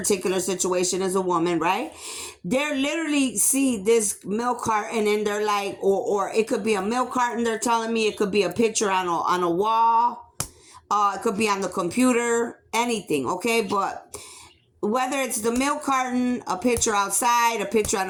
situation is a woman, right? They're literally see this milk carton and they're like, or it could be a milk carton, they're telling me. It could be a picture on a wall. It could be on the computer, anything, okay? But whether it's the milk carton, a picture outside, a picture on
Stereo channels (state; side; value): identical; both; correlation 1.00